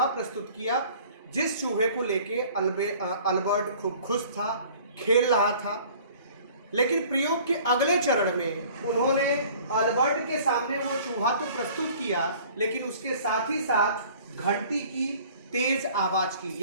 प्रस्तुत किया, जिस चूहे को लेके अल्बर्ट खूब खुश था, खेल रहा था। लेकिन प्रयोग के अगले चरण में उन्होंने अल्बर्ट के सामने वो चूहा तो प्रस्तुत किया, लेकिन उसके साथ ही साथ घंटी की तेज आवाज की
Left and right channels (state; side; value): inverted; both; correlation -0.50